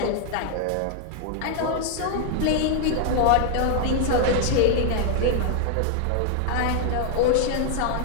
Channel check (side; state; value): both; different; correlation 0.00